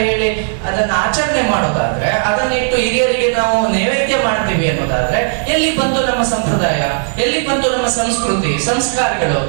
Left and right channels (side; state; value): left; silent; digital silence